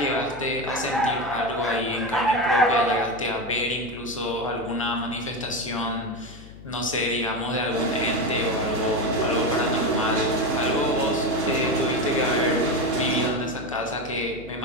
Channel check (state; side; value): noise; left; hum, 18 dB below the sound